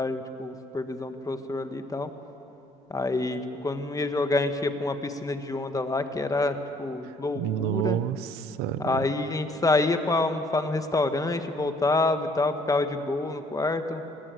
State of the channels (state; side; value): normal; both; correlation 0.62